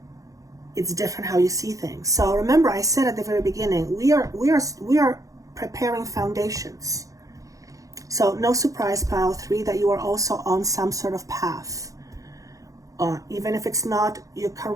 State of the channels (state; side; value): late; left; 0.16 ms